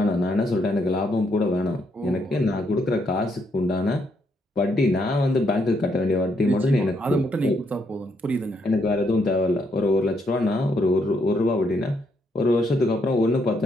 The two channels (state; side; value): normal; both; correlation 0.75